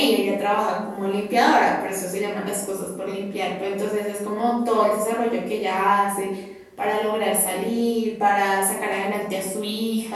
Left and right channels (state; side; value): identical; both; correlation 1.00